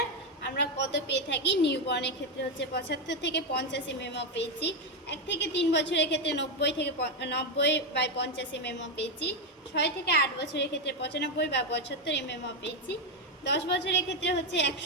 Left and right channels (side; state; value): both; normal; correlation 0.07